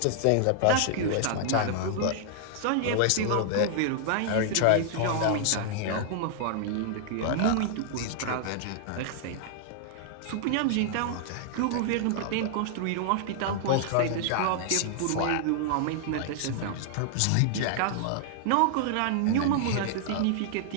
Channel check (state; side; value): different; both; correlation -0.01